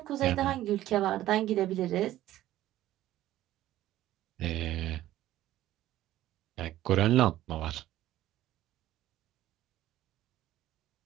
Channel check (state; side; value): quieter; left; 14.2 dB